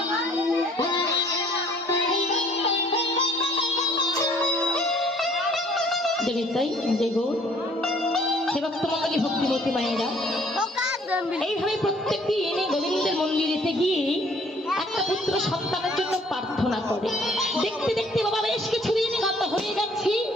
ভক্তিমতী মায়েরা এইভাবে প্রত্যেকটি এনে গোবিন্দের মন্দিরেতে গিয়ে একটা পুত্র সন্তানের জন্য প্রার্থনা করে। দেখতে দেখতে বাবা বেশ কিছুদিন গত হয়ে যাচ্ছে।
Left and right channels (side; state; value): both; normal; correlation 0.59